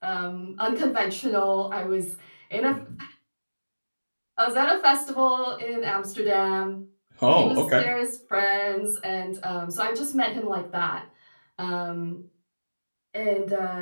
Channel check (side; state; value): both; inverted; correlation -1.00